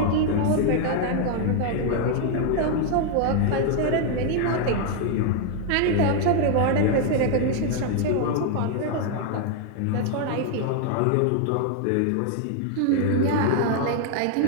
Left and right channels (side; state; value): both; different; correlation 0.00